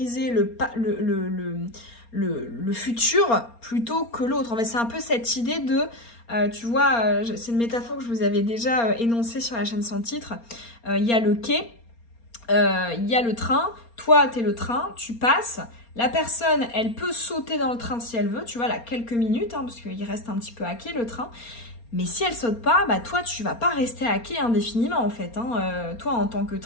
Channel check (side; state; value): right; late; 4.3 ms